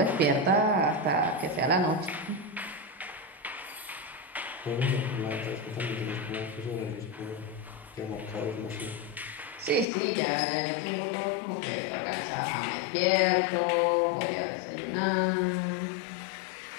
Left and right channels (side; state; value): right; drops out; at 9.9 s